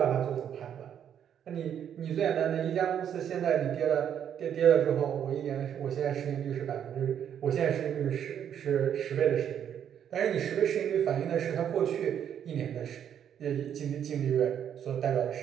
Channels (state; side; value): quieter; left; 9.1 dB